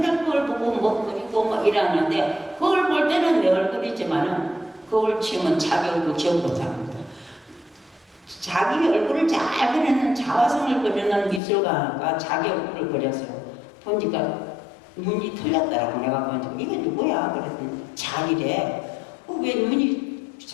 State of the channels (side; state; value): right; drops out; at 11.4 s